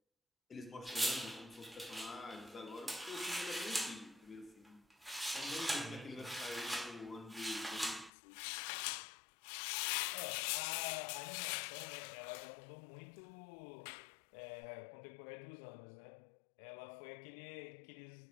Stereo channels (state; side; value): drops out; right; at 8.1 s